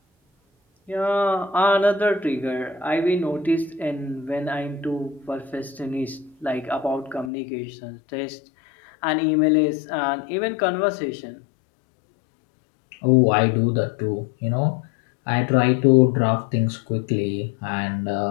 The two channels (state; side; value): drops out; right; at 7.3 s